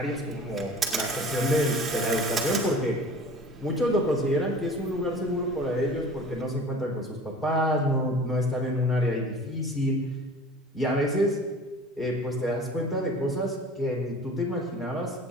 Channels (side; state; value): both; normal; correlation 0.43